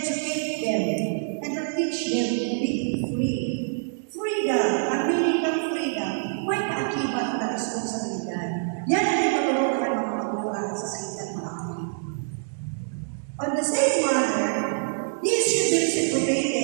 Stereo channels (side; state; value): left; silent; digital silence